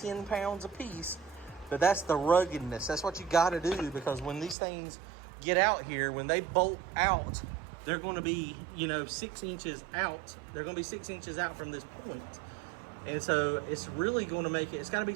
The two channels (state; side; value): drops out; left; at 4.5 s